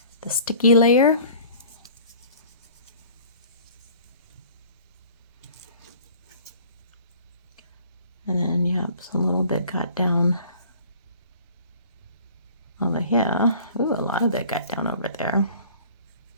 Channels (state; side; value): inverted; both; correlation -0.49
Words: the sticky layer. And then, yep, so a little bit got down over here. Ooh, a lot of it got down over there.